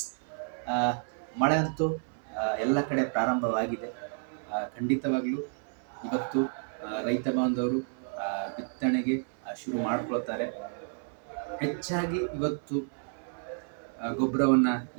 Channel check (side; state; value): left; silent; 57 dB below the other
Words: ಆ, ಮಳೆ ಅಂತೂ ಎಲ್ಲ ಕಡೆ ಪ್ರಾರಂಭವಾಗಿದೆ. ಖಂಡಿತವಾಗ್ಲೂ ಇವತ್ತು ರೈತ ಬಾಂಧವರು ಬಿತ್ತನೆಗೆ ಶುರು ಮಾಡ್ಕೊಳ್ತಾರೆ. ಹೆಚ್ಚಾಗಿ ಇವತ್ತು ಗೊಬ್ಬರವನ್ನು